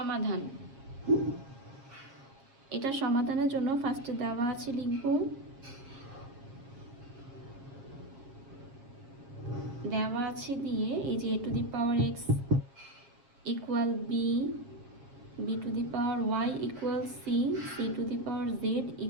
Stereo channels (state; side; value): late; left; 7.6 ms